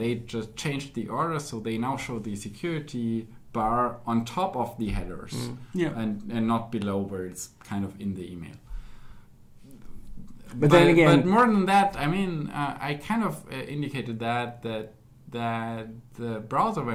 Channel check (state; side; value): identical; both; correlation 1.00